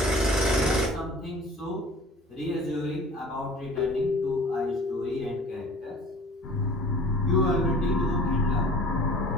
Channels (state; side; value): normal; both; correlation 0.46